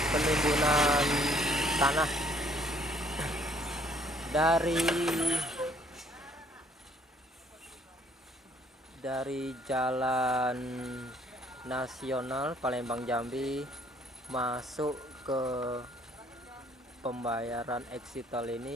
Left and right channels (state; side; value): normal; both; correlation 0.62